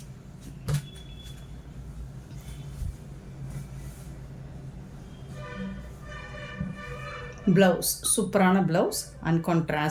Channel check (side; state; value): both; identical; correlation 1.00